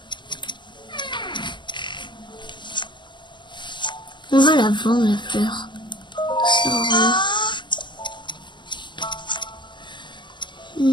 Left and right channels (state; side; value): late; right; 0.22 ms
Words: On va la vendre, la fleur. Ça sert à rien.